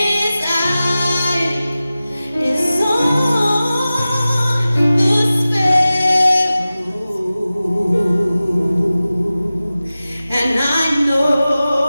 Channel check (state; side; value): inverted; both; correlation -0.96